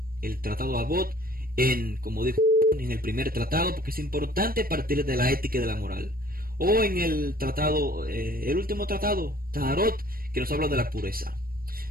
el tratado Avot como dijo, en el primer tratado, porque es importante partir de la ética y de la moral. O en el tratado, el último tratado, Taharot, que nos habla de la pureza.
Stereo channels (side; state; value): left; late; 0.43 ms